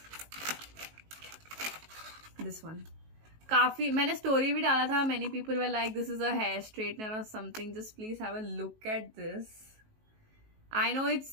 This one. काफी मैंने story भी डाला था. Many people were like, this is a hair straightener or something. Just please have a look at this. I know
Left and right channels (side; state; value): left; late; 19 ms